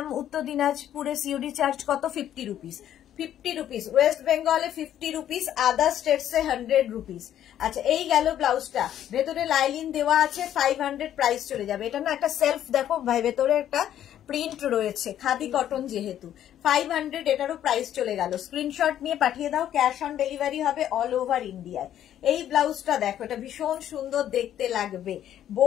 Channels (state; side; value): quieter; right; 11.0 dB